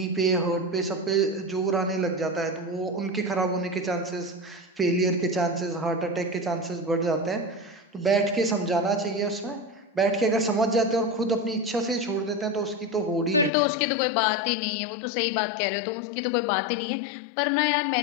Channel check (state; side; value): drops out; right; at 13.5 s